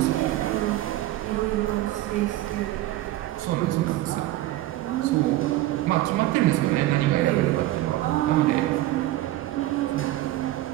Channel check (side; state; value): left; quieter; 15.6 dB